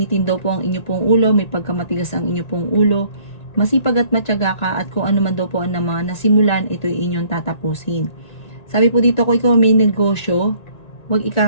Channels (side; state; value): right; late; 1.9 ms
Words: daw po ang inyo pong ulo, may pagkamatigas ang inyo pong ulo. Masipag at matyaga ka at kung ano man daw po ang mga nasimulan, ito ay inyong tatapusin. Sabi po dito, kung ikaw may negosyo, huwag